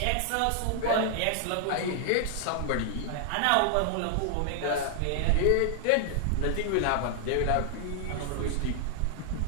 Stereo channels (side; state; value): both; different; correlation -0.01